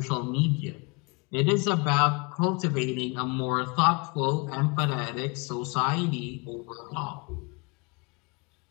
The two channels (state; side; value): quieter; right; 30.1 dB